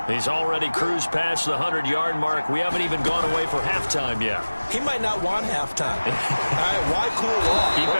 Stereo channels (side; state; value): both; inverted; correlation -1.00